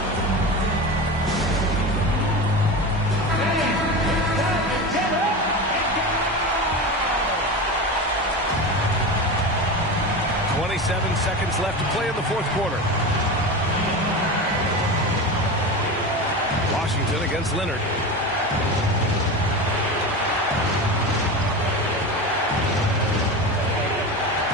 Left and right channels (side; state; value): both; normal; correlation 0.25